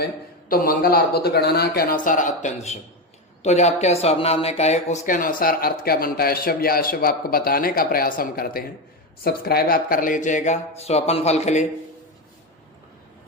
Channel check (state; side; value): normal; both; correlation 0.13